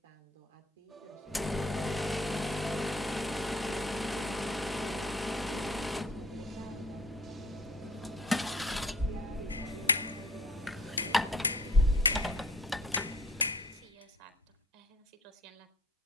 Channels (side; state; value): both; normal; correlation 0.50